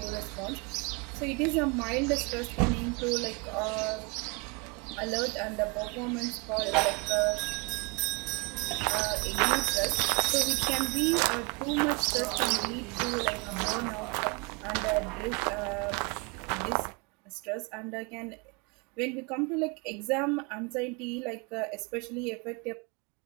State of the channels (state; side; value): quieter; left; 30.0 dB